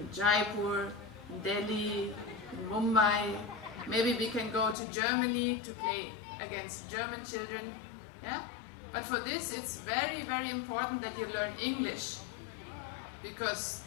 Jaipur, in Delhi, in Mumbai. Maybe we can go to Germany to play against German children. Yeah? But for this it's very, very important that you learn English. Because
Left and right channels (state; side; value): drops out; right; at 4.8 s